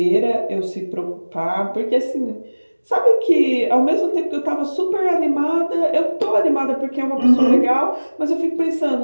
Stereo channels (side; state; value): both; inverted; correlation -1.00